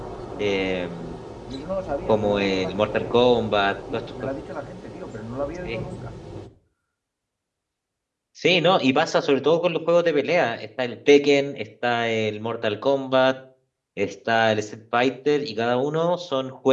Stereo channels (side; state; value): both; identical; correlation 1.00